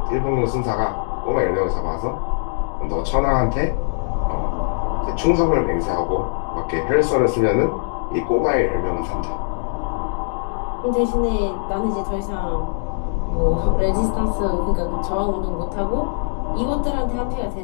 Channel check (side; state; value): right; silent; digital silence